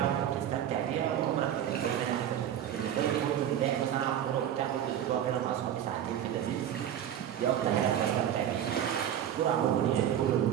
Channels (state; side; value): quieter; left; 10.3 dB